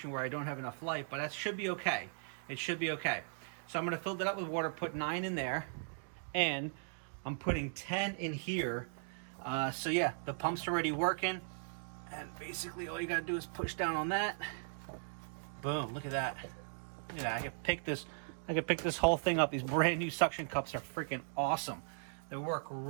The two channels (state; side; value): silent; left; digital silence